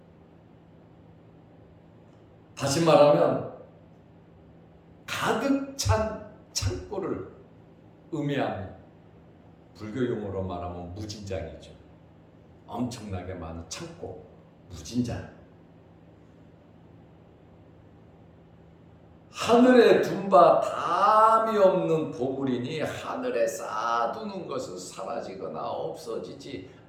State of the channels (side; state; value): both; identical; correlation 1.00